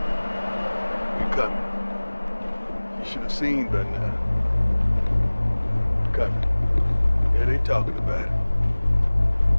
We coming. You should have seen by now. Coming. Yeah, they talking about it.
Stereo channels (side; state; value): both; inverted; correlation -1.00